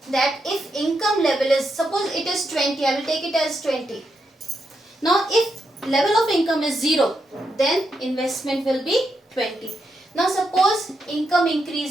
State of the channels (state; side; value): normal; both; correlation 0.83